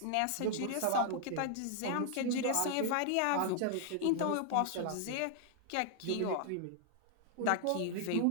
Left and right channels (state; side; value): different; both; correlation 0.00